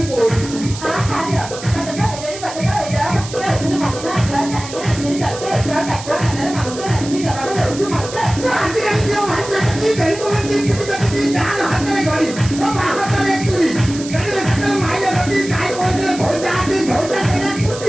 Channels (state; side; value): noise; right; hiss, 12 dB below the sound